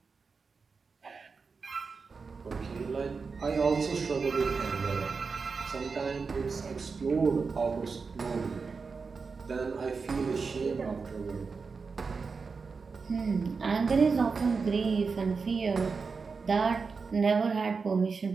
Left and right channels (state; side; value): quieter; left; 4.9 dB